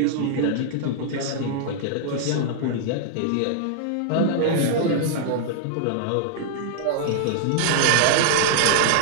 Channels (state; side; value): different; both; correlation -0.01